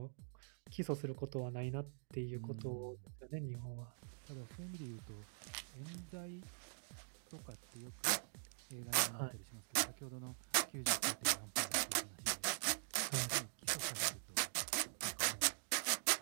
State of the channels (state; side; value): silent; left; digital silence